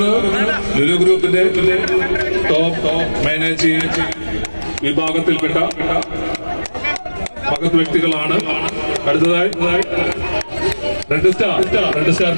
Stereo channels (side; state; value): both; inverted; correlation -1.00